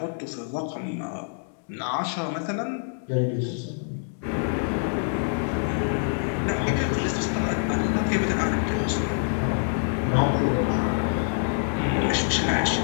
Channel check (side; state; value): right; silent; digital silence